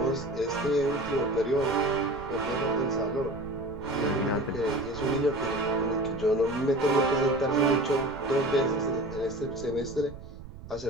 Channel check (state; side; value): noise; right; rumble, 15 dB below the sound